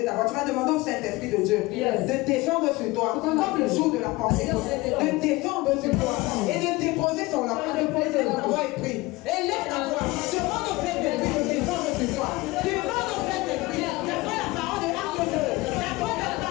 ta voix. Tu vas demander au Saint-Esprit de Dieu de descendre sur toi, comme le jour de la Pentecôte, de descendre sur toi et de déposer son enfant. Ta voix est prise. Élève ta voix. Demande au Saint-Esprit de descendre sur toi. Demande au Saint-Esprit. D'après la parole de Acte 2. D'après la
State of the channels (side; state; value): right; quieter; 21.5 dB